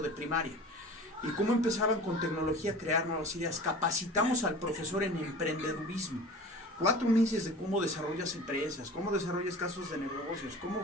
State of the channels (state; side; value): normal; both; correlation 0.39